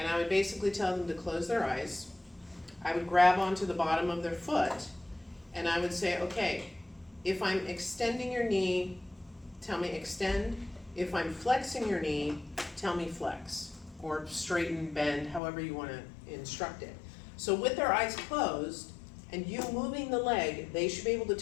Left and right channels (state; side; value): drops out; right; at 15.4 s